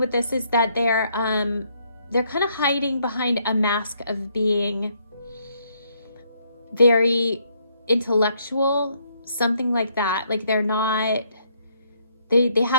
this is that they're kind of hiding behind a mask of being very intellectual, something like that. Like they're not, they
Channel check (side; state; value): both; inverted; correlation -0.71